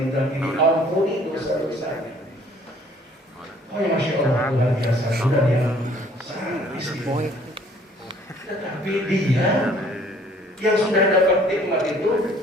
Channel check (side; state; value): both; normal; correlation 0.58